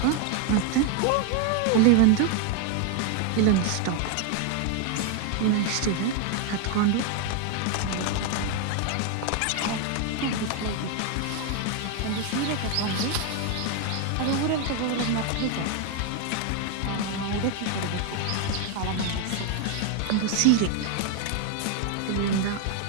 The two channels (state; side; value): different; both; correlation 0.01